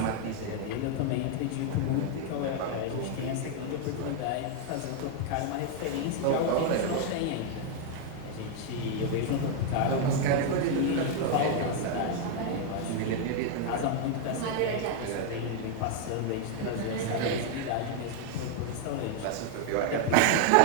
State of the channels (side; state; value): both; different; correlation 0.00